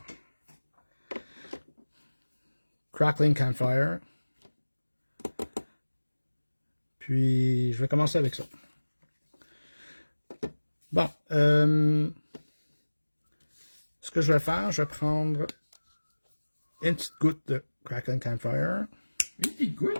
Crackling Campfire. Puis, je vais commencer avec ça. Bon, ce que je vais faire, je vais prendre une petite goutte de Crackling Campfire. Une petite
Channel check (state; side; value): inverted; both; correlation -1.00